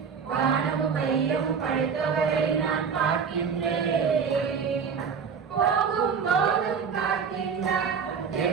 வானமும் வையமும் படைத்தவரை நான் பார்க்கின்றேன் போகும் போதும் காக்கின்றார்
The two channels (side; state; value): left; quieter; 6.3 dB